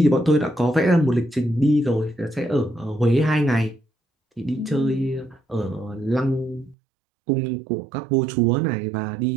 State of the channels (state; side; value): drops out; left; at 6.8 s